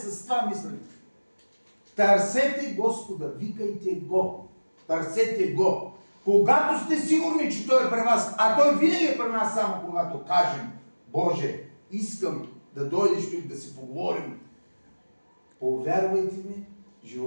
това мислене. Търсете Господа, викайте Го. Търсете Го. Когато сте сигурни, че Той е при вас, а Той винаги е при нас само когато кажем, Боже, искам да дойдеш тук да си поговорим. Повярвайте ми,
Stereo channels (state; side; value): inverted; both; correlation -1.00